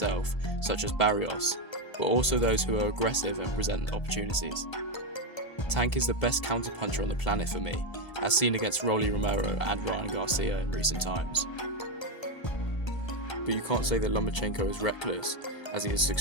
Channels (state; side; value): late; right; 1.3 ms